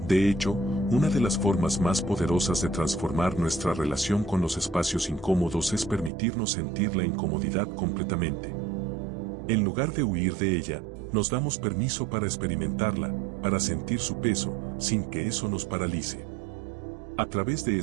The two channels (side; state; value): left; drops out; at 6.1 s